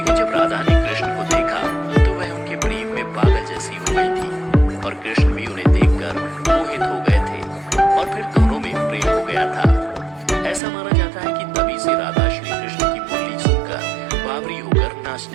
जब राधा ने कृष्ण को देखा तो वह उनके प्रेम में पागल जैसी हो गई थी और कृष्ण भी उन्हें देखकर मोहित हो गए थे और फिर दोनों में प्रेम हो गया था। ऐसा माना जाता है कि तभी से राधा श्री कृष्ण की बोली सुनकर बावरी होकर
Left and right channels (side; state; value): left; drops out; at 10.6 s